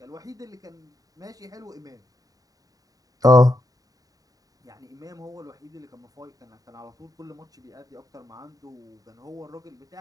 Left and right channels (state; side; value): late; left; 0.18 ms